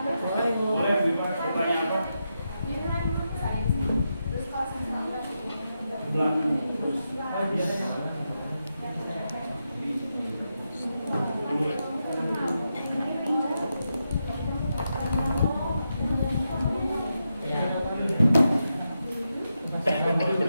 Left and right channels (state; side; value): inverted; both; correlation -0.86